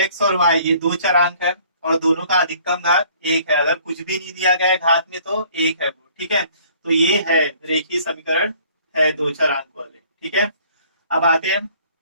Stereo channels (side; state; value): both; inverted; correlation -0.56